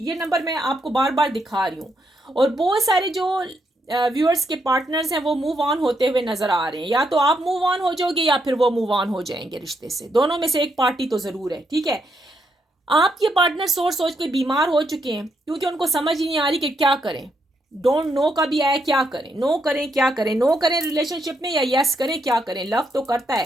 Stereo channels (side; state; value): both; normal; correlation 0.78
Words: नंबर मैं आपको बार बार दिखा रही हूँ। और बहुत सारे जो व्यूअर्स के पार्टनर्स हैं वो मूव ऑन होते हुए नजर आ रहे हैं। या तो आप मूव ऑन हो जाओगे या फिर वो मूव ऑन हो जाएंगे रिश्ते से, दोनों में से एक पार्टी तो जरूर है, ठीक है। आपके पार्टनर सोच सोच के बीमार हो चुके हैं क्योंकि उनको समझ ही नहीं आ रही कि क्या करें। डोंट नो का भी आया, क्या करें, नो करें क्या करें, नो करें रिलेशनशिप में या यस करें क्या करें। लव तो करता